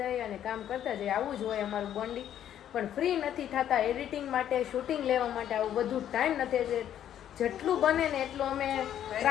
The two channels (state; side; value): quieter; right; 10.5 dB